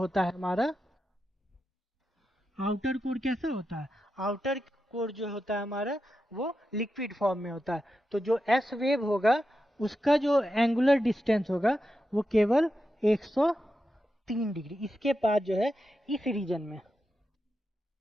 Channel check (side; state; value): both; normal; correlation 0.88